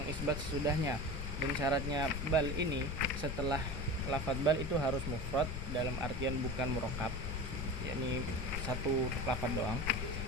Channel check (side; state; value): left; noise; rumble, 4 dB below the sound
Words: sesudahnya. Dan syaratnya bal ini setelah lafadz bal itu harus mufrad dalam artian bukan murakkab, yakni satu lafadz doang.